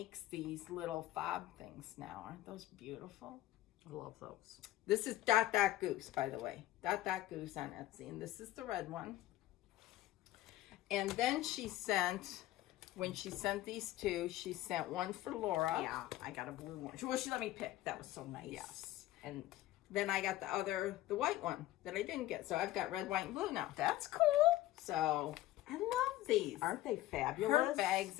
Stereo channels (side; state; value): right; quieter; 15.5 dB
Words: these little fob things now. Aren't those beautiful? I love those. This is Dot Dot Goose, by the way. Dot Dot Goose on Etsy. And this is the red one. And then she sent, when she sent these two, she sent one for Laura. Yeah, I got a blue one. Well, she let me pick. That was so nice. Yes. And then I got the white one that I didn't get. So I've got red, white, and blue now. That's cool. So I love these. Aren't they fabulous? Her bags